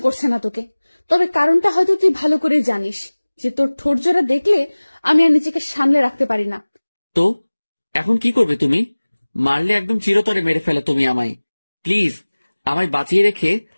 করছে না তোকে। তবে কারণটা হয়তো তুই ভালো করে জানিস, যে তোর ঠোঁট জোড়া দেখলে আমি আর নিজেকে সামলে রাখতে পারি না। তো এখন কি করবে তুমি? মারলে একদম চিরতরে মেরে ফেলো তুমি আমায়। প্লিজ আমায় বাঁচিয়ে রেখে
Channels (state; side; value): inverted; both; correlation -1.00